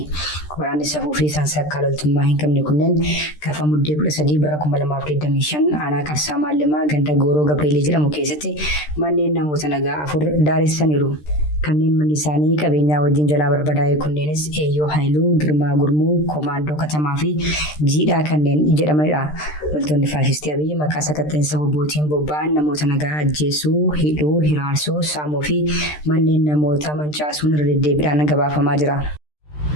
Waraanni safuu fi sansakkaa loltummaa hin qabne kunneen gaafa muddee 13 bara 2025 aanaa Qarsaa Maallimaa ganda Gooroo Gabreelii jedhamu keessatti manneen namoota nagaa 4 daaressaniiru. Kanneen manni isaanii qabeenyaa wajjin jalaa barbadaa'e kunneenis Eeyyoo Haayiluu, Girmaa Gurmuu, Komaandoo Katamaa fi Jiidhaa kanneen jedhamanidha. Loltoonni faashtii Abiyyi maqaa sakatta'insa WBOtiin bobba'an namoota nagaa ajjeesuu, hidhuu, hiraarsuu, saamuu fi manneen namoota mancaasuun irra deddeebiidhaan gabaafamaa jira.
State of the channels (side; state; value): right; late; 13 ms